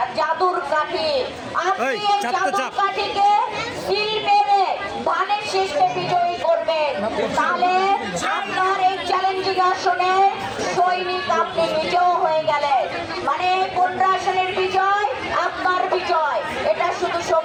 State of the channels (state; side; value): identical; both; correlation 1.00